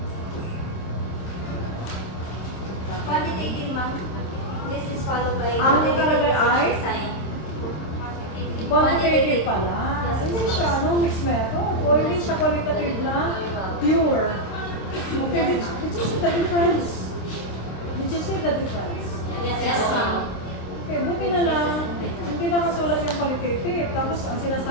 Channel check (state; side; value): late; right; 27 ms